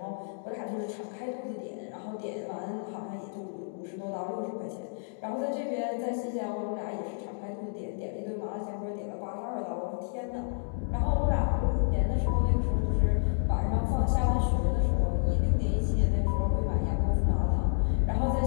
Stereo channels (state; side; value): silent; right; digital silence